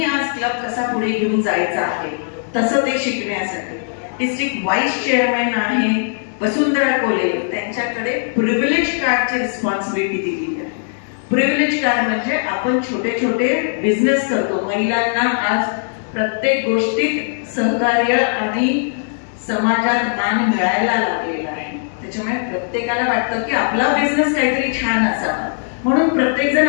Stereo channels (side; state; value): right; silent; 67 dB below the other